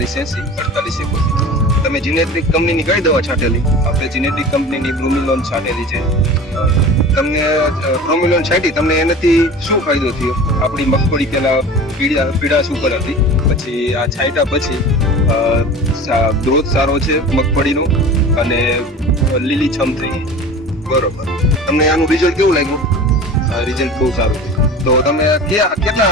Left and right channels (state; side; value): normal; both; correlation 0.37